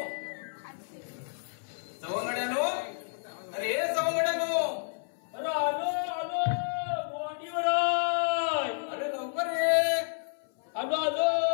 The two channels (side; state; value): right; silent; 57 dB below the other